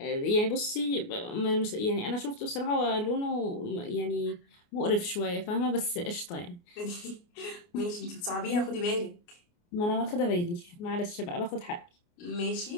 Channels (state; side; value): late; right; 29 ms